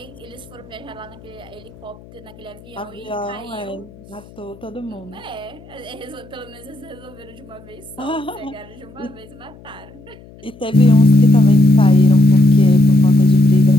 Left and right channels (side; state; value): left; noise; hum, 22 dB below the sound